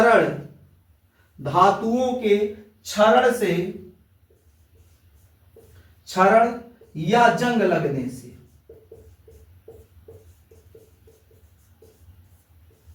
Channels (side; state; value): both; identical; correlation 1.00